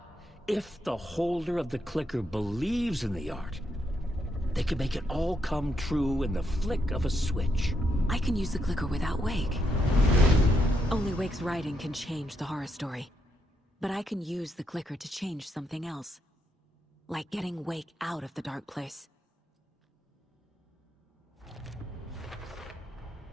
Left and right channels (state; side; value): normal; both; correlation 0.79